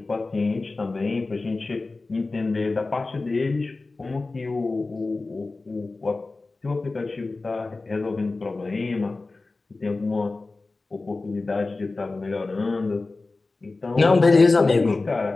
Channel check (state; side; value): quieter; right; 3.5 dB